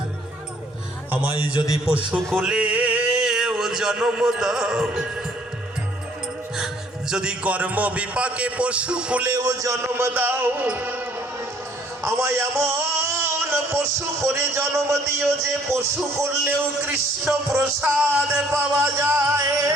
আমায় যদি পশু কুলে জন্ম দাও, যদি কর্ম বিপাকে পশু কুলেও জন্ম দাও, আমায় এমন পশু করে জন্ম দিও যে পশু করলেও কৃষ্ণ প্রসাদ পাওয়া যায়।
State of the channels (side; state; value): both; normal; correlation 0.61